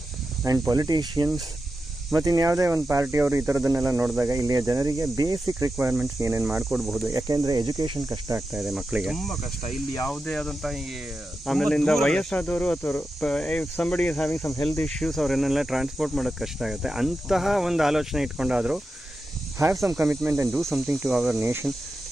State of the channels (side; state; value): both; normal; correlation 0.90